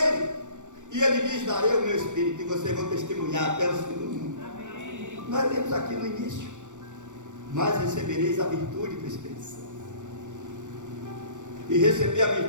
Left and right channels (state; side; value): late; left; 0.85 ms